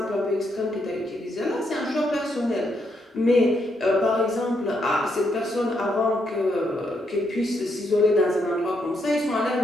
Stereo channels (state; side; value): normal; both; correlation 0.77